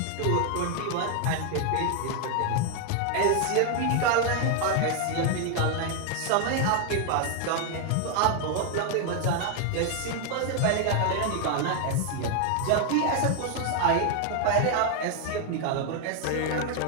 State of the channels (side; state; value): both; different; correlation 0.01